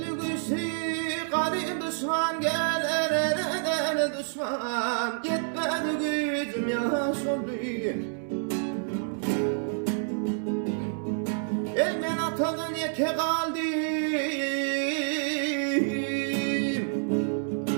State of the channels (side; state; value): left; silent; 59 dB below the other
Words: güçlü garip düşman gelir eder düşman, yetmedi gücüm yaş oldu. Ben atadan yeke kaldım,